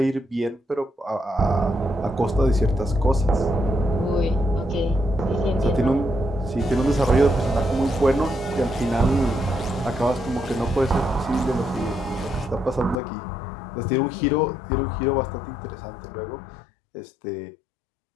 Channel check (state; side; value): drops out; right; at 13.0 s